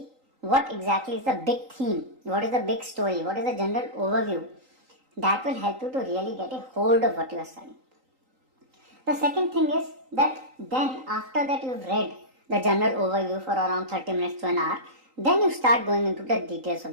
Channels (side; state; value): left; late; 3.8 ms